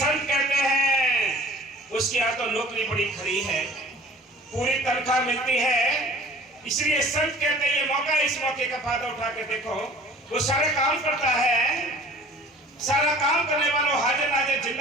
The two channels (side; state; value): both; normal; correlation 0.48